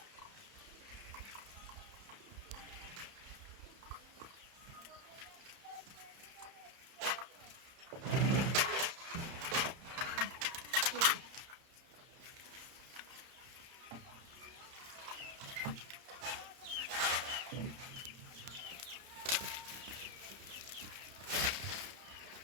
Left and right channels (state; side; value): late; left; 31 ms